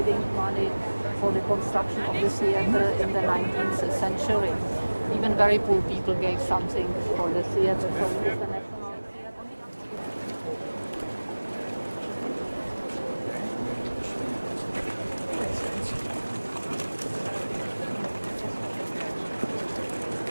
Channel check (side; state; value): both; inverted; correlation -1.00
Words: money for the construction of the theatre in the 19th century. Even very poor people gave something for the theatre. So it is the National Theatre.